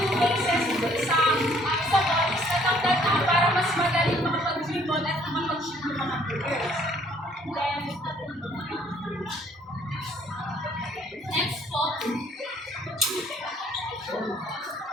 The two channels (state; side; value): normal; both; correlation 0.61